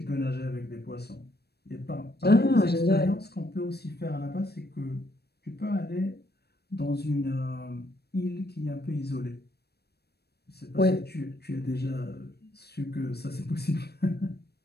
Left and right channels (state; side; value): late; right; 0.47 ms